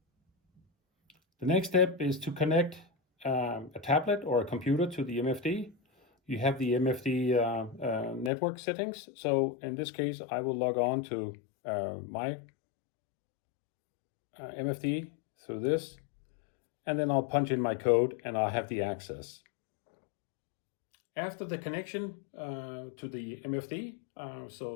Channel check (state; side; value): drops out; right; at 8.3 s